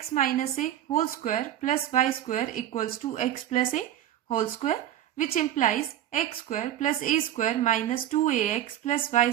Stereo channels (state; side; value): quieter; left; 12.0 dB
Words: minus A whole square plus y square equals to x plus A whole square, which implies x square plus A square minus 2ax plus y